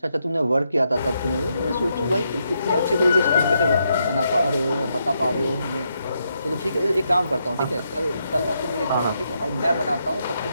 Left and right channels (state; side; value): inverted; both; correlation -0.80